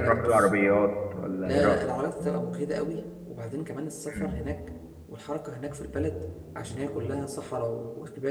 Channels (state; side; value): identical; both; correlation 1.00